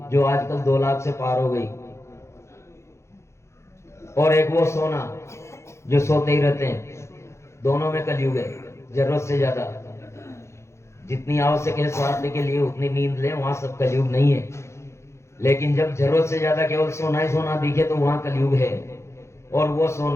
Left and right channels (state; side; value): late; right; 0.13 ms